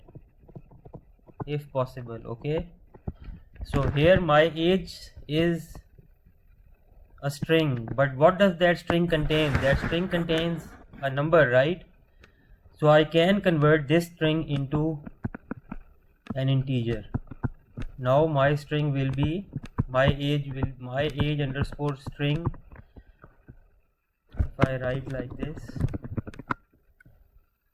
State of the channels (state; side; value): identical; both; correlation 1.00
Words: if possible. Okay, so here my age is a string, but what does that string contain? That string contains a number, right? So I can convert this string into an integer. Now my string will be my age underscore string. If I write like this,